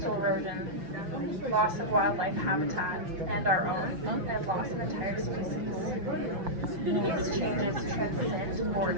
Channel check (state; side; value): late; left; 5.8 ms